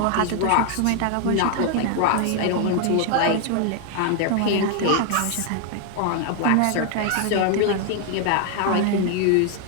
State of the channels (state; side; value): different; both; correlation 0.00